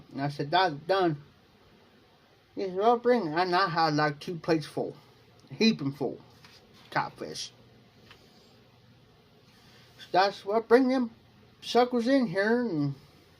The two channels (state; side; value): identical; both; correlation 1.00